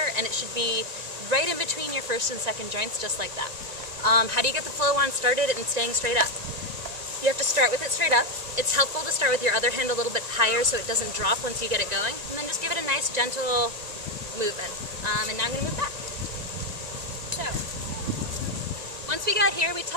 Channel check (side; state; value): left; late; 1.9 ms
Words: and it should be right in between your first and second joints, just like that. How do you get the flow wand started and staying straight up? You have to start with it straight up. It's helpful to start with your other hand a little bit higher so it doesn't drop once you get it going, and then just give it a nice gentle movement. And now I'm going to move back. So, once we got here, we